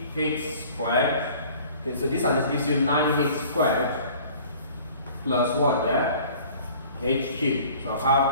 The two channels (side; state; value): both; inverted; correlation -0.49